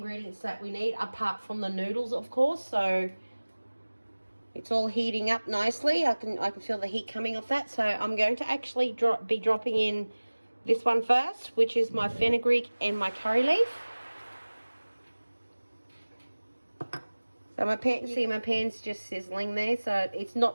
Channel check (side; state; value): both; inverted; correlation -1.00